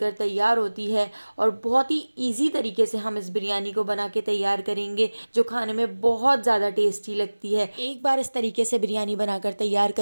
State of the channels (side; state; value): both; inverted; correlation -1.00